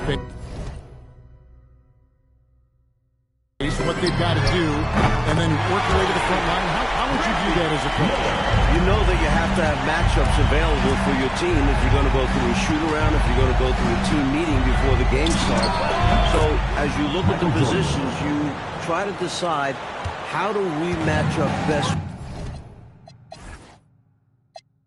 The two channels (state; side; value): identical; both; correlation 1.00